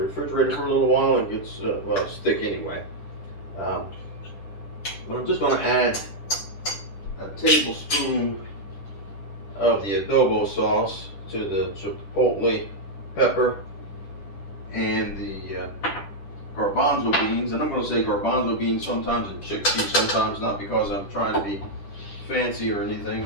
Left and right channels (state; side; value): late; right; 10 ms